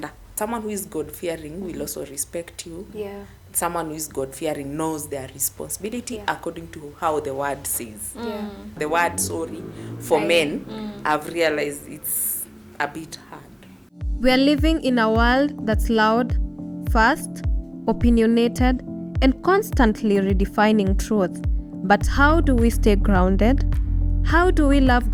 Someone who is God fearing will also respect you. Yeah. Someone who is God fearing knows their responsibility according to how the word says. The word sorry for men, I've realized it's a bit hard. We are living in a world that's loud, fast, opinionated, and constantly redefining truth. But how do we stay grounded? How do we love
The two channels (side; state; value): both; identical; correlation 1.00